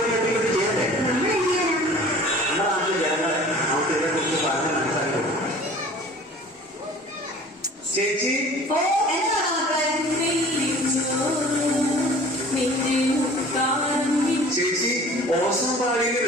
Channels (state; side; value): normal; both; correlation 0.46